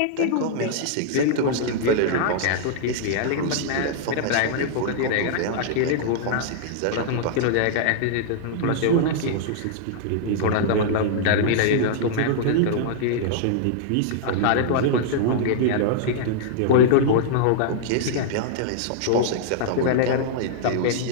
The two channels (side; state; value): both; different; correlation -0.01